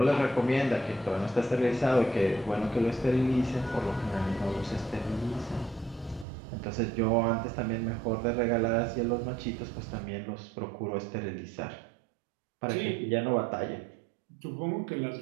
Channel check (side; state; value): left; drops out; at 6.2 s